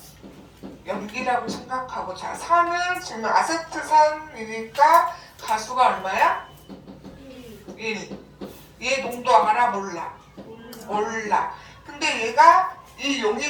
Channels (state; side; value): identical; both; correlation 1.00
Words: 염기라고 생각하고 자 산은 지금 아세트산이니까 가수가 얼마야? 1. 얘 농도 알아? 몰라? 몰라. 근데 얘가 이